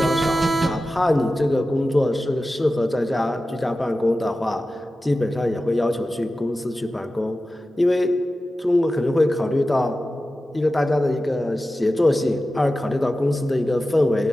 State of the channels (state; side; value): normal; both; correlation 0.94